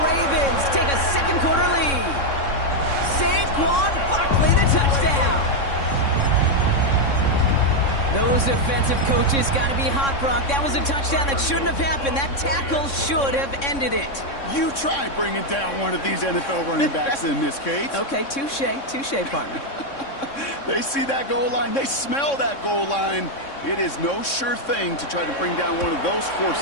take a second quarter lead. Saquon Barkley, the touchdown. Those defensive coaches got to be hot, Brock. That was a touchdown that shouldn't have happened. That tackle should have ended it. You try bringing down one of these NFL running backs in this case. Okay, touche, partner. They see that goal line. They smell that goal line. It is no sure thing to try to bring down one of those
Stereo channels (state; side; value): late; right; 3.6 ms